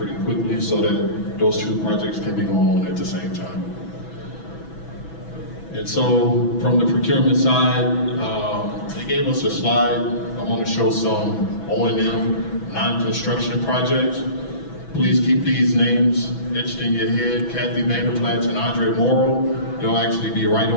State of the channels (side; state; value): right; late; 6.1 ms